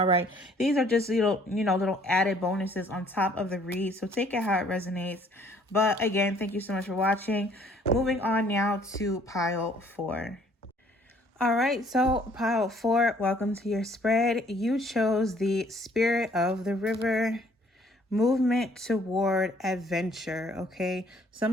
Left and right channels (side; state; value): both; normal; correlation 0.60